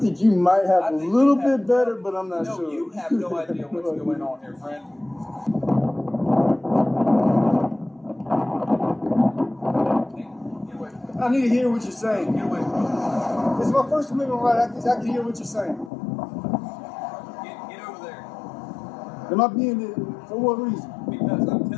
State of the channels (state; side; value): drops out; right; at 15.9 s